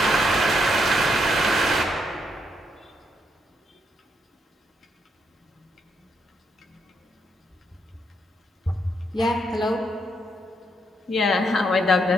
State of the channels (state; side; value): normal; both; correlation 0.77